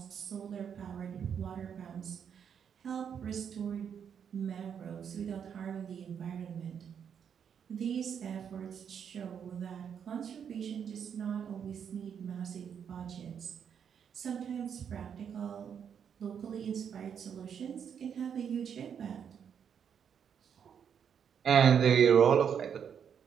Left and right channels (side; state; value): left; quieter; 7.8 dB